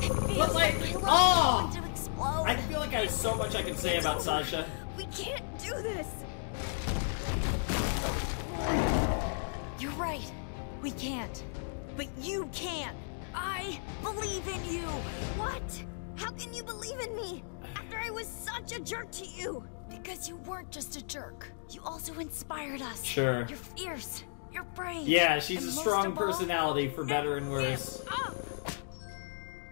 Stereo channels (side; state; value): right; silent; digital silence